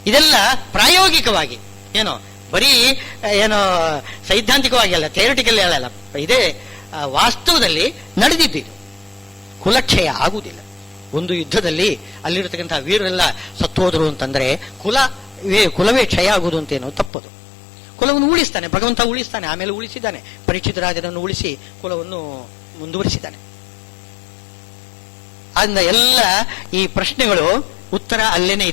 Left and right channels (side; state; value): right; drops out; at 17.1 s